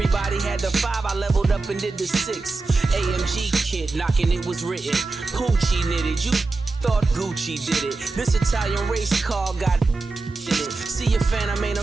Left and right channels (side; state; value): left; quieter; 3.6 dB